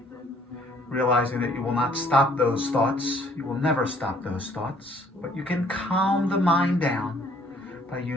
realizing that you will not stop those thoughts. You will never stop those thoughts, but you can calm the mind down by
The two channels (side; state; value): both; normal; correlation 0.60